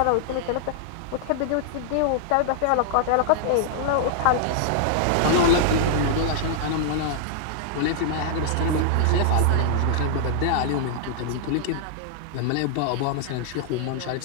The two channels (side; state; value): both; different; correlation -0.01